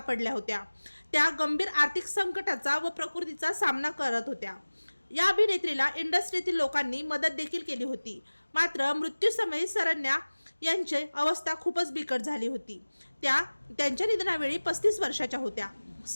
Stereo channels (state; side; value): inverted; both; correlation -1.00